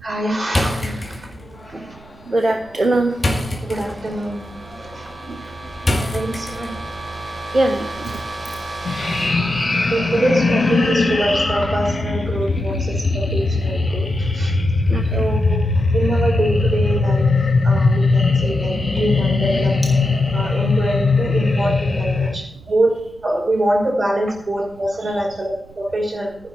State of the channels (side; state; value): right; noise; rumble, 24 dB below the sound